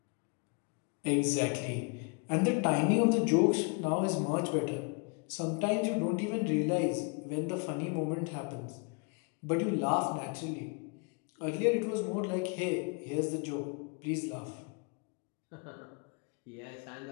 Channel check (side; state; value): right; quieter; 34.5 dB